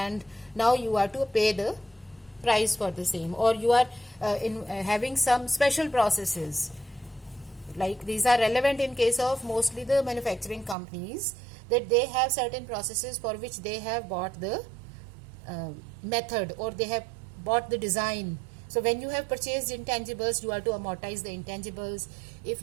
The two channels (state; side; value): drops out; left; at 10.8 s